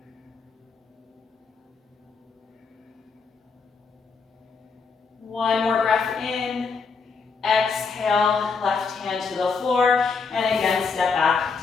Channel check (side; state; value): right; quieter; 5.0 dB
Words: One more breath in. Exhale, left hand to the floor, and again, step